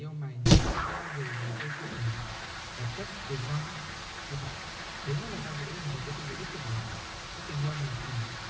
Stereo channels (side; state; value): both; identical; correlation 1.00